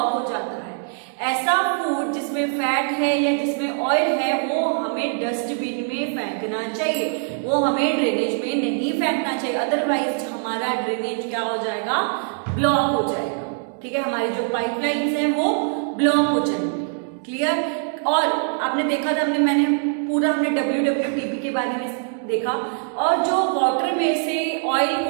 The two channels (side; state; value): left; silent; 58 dB below the other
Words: हो जाता है. ऐसा फूड जिसमें फैट है या जिसमें ऑयल है वो हमें डस्टबिन में फेंकना चाहिए, वो हमें ड्रेनेज में नहीं फेंकना चाहिए. अदरवाइज हमारा ड्रेनेज क्या हो जाएगा, ब्लॉक हो जाएगा. ठीक है, हमारी जो पाइपलाइंस हैं वो ब्लॉक हो जाएंगी. क्लियर. और आपने देखा था मैंने WWTP के बारे में देखा, और जो वाटर में से ऑयल